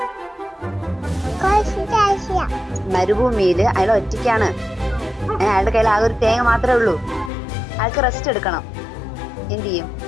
മരുഭൂമിയിൽ അയാൾ ഒറ്റയ്ക്കാണ്. അയാളുടെ കയ്യിൽ ആകെ ഒരു തേങ്ങ മാത്രമേ ഉള്ളൂ. അയാൾക്ക് റെസ്റ്റ് എടുക്കണം. എന്ത് ചെയ്യും?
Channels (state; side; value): drops out; right; at 7.3 s